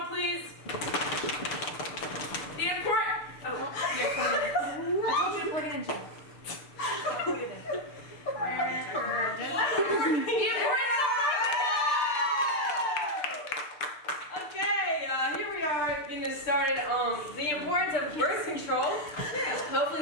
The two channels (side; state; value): right; late; 6.7 ms